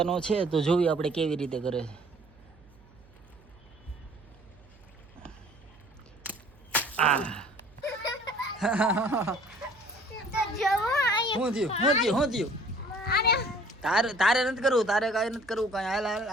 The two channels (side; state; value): right; noise; hum, 26 dB below the sound